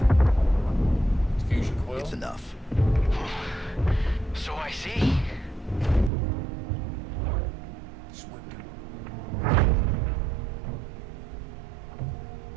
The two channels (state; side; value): drops out; left; at 6.1 s